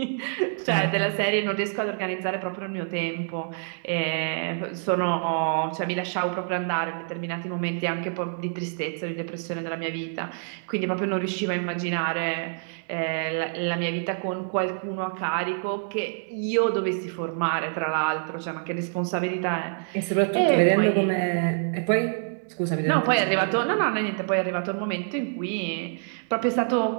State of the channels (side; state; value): left; silent; 60 dB below the other